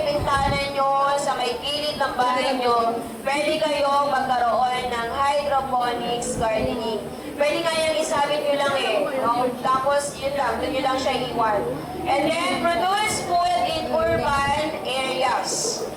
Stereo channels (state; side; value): identical; both; correlation 1.00